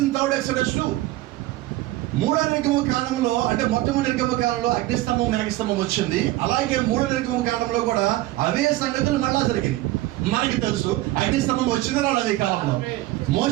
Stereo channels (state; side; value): quieter; left; 17.0 dB